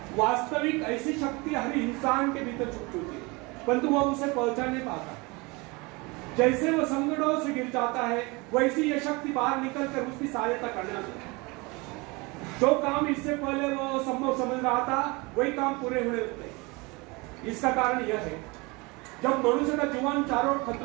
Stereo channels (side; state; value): left; quieter; 26.0 dB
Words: वास्तविक ऐसी शक्ति हर इंसान के भीतर छुपी होती है, परंतु वह उसे पहचान नहीं पाता। जैसे वह संकटों से गिर जाता है, वैसी यह शक्ति बाहर निकलकर उसकी सहायता करने लगती है। जो काम इससे पहले वह संभव समझ रहा था, वही काम पूरे होने लगते हैं। इसका कारण यह है, जब मनुष्य का जीवन चारों ओर